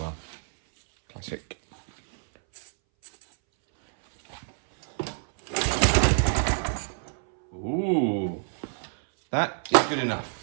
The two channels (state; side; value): silent; left; 60 dB below the other